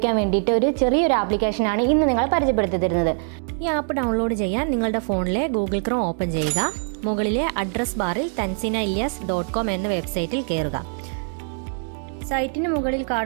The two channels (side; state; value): left; silent; 58 dB below the other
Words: വേണ്ടിയിട്ട് ഒരു ചെറിയൊരു ആപ്ലിക്കേഷനാണ് ഇന്ന് നിങ്ങളെ പരിചയപ്പെടുത്തി തരുന്നത്. ഈ ആപ്പ് ഡൗൺലോഡ് ചെയ്യാൻ നിങ്ങളുടെ ഫോണിലെ ഗൂഗിൾ ക്രോം ഓപ്പൺ ചെയ്യുക. മുകളിലെ അഡ്രസ് ബാറിൽ tanzinailias.com എന്ന വെബ്സൈറ്റിൽ കയറുക. സൈറ്റിന് മുകളിൽ